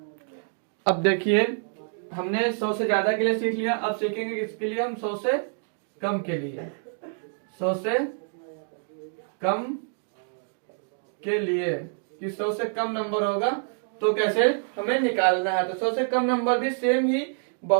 अब देखिए हमने 100 से ज्यादा के लिए सीख लिया, अब सीखेंगे किसके लिए हम 100 से कम के लिए। 100 से कम के लिए कि 100 से कम नंबर होगा तो कैसे हमें निकालना है। तो 100 से कम नंबर भी सेम ही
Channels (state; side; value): silent; left; 60 dB below the other